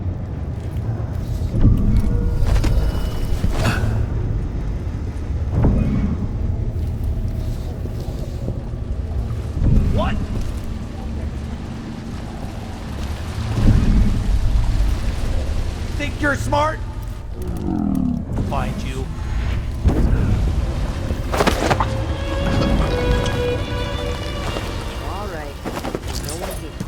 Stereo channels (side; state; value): both; identical; correlation 1.00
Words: What? Think you're smart? Find you. All right. No one here.